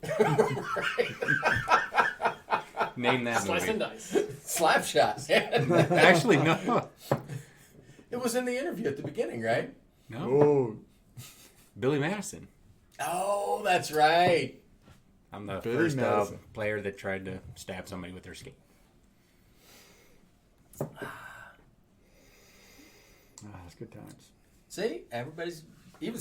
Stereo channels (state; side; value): identical; both; correlation 1.00